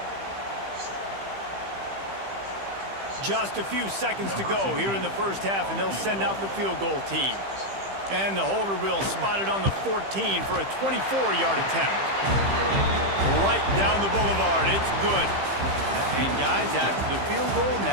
Just a few seconds to go here in the first half, and they'll send out the field goal team. And the holder will spot it on the 14 for a 24-yard attempt. Right down the boulevard. It's good. And guys, after the field goal,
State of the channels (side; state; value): left; late; 15 ms